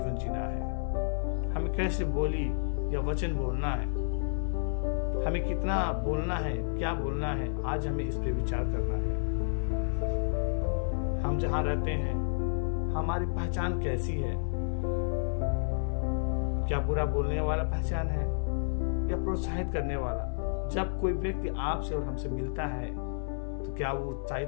जीना है, हमें कैसे बोली या वचन बोलना है, हमें कितना बोलना है, क्या बोलना है। आज हमें इस पे विचार करना है। हम जहां रहते हैं हमारी पहचान कैसी है? क्या बुरा बोलने वाला पहचान है या प्रोत्साहित करने वाला? जब कोई व्यक्ति आपसे और हमसे मिलता है तो क्या वो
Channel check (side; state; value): right; silent; 55 dB below the other